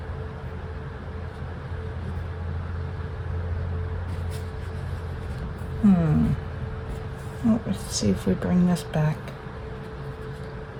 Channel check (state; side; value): identical; both; correlation 1.00